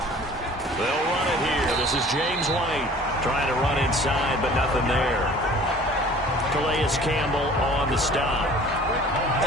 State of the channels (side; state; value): both; normal; correlation 0.48